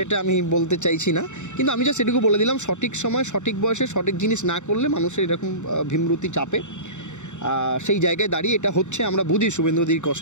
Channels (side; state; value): right; late; 0.84 ms